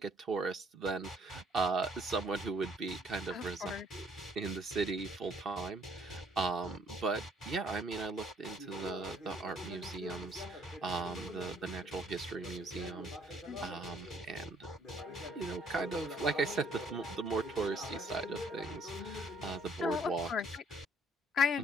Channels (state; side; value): normal; both; correlation 0.63